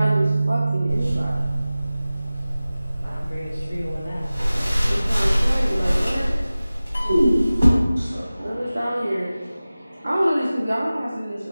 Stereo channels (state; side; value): inverted; both; correlation -0.97